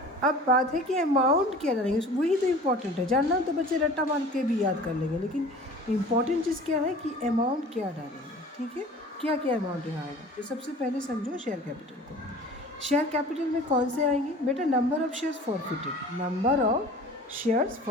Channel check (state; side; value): normal; both; correlation 0.43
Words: अब बात है कि अमाउंट क्या डालेंगे, वही तो इम्पोर्टेंट है। जानना हो तो बच्चे रट्टा मार के भी याद कर लेंगे, लेकिन इम्पॉर्टेंट चीज़ क्या है कि अमाउंट क्या डालेंगे। ठीक है, क्या क्या अमाउंट यहाँ आएगा। तो सबसे पहले समझो शेयर कैपिटल को। शेयर कैपिटल में कौन से आएंगे बेटा, number of shares forfeited, number of shares